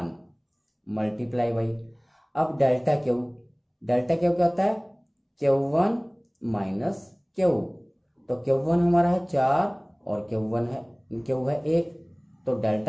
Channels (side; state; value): both; identical; correlation 1.00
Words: मल्टीप्लाई बाई, अब डेल्टा क्यू, डेल्टा क्यू क्या होता है Q1 माइनस क्यू, तो Q1 हमारा है 4 और Q1 है क्यू है 1, तो